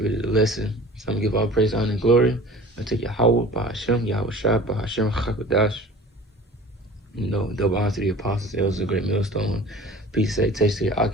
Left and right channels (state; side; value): normal; both; correlation 0.43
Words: the lesson. So I'm gonna give all praise, honor, and glory unto Yahweh, Bahashem, Yahweh Shai, Bahashem, Chakadash. You know, double honor to the apostles, elders, a great millstone. Peace, salutation to the